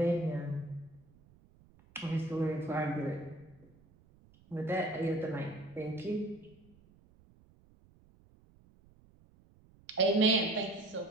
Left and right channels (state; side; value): noise; right; rumble, 28 dB below the sound